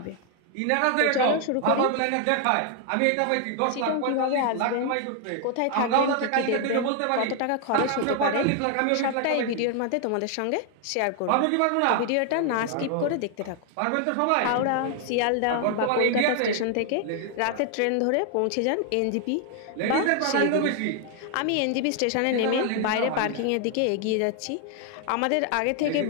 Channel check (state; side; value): different; both; correlation 0.00